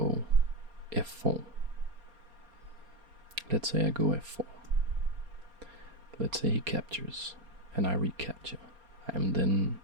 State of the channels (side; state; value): left; late; 4.3 ms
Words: f4. Let's say I go f4. Let's say he captures, and I recapture. I am then